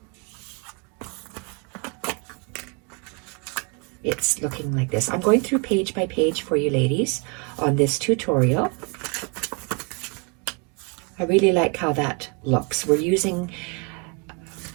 it's looking like this. I'm going through page by page for you ladies on this tutorial. I really like how that looks. We're using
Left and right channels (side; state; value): left; quieter; 31.3 dB